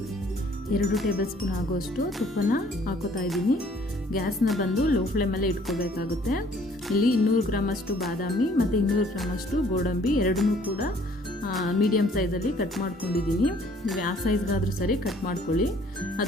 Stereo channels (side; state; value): both; normal; correlation 0.59